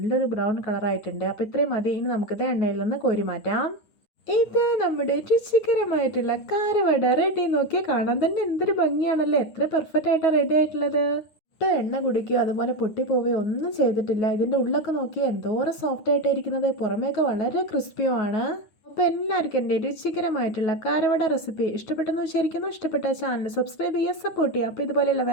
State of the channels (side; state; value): right; late; 9.4 ms